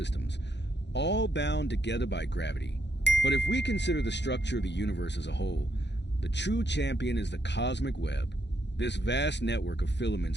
all bound together by gravity. But if we consider the structure of the universe as a whole, the true champion is the cosmic web. This vast network of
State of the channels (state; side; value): late; right; 0.51 ms